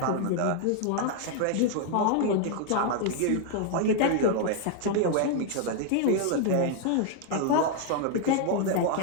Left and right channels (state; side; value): different; both; correlation 0.00